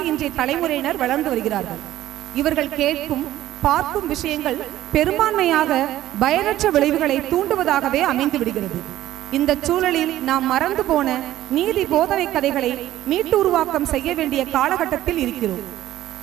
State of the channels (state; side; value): quieter; left; 13.9 dB